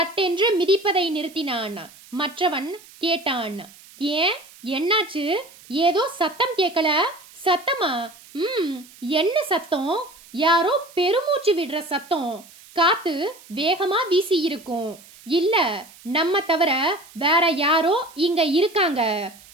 மிதிப்பதை நிறுத்தினான். மற்றவன் கேட்டான், ஏன், என்னாச்சு? ஏதோ சத்தம் கேட்கல. சத்தமா? என்ன சத்தம்? யாரோ பெருமூச்சு விடுற சத்தம். காத்து வேகமா வீசி இருக்கும். இல்ல, நம்ம தவிர வேற யாரோ இங்க இருக்காங்க.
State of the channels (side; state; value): right; noise; hiss, 23 dB below the sound